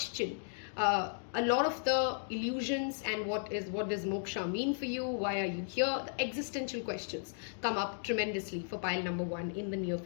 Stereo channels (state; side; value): silent; right; digital silence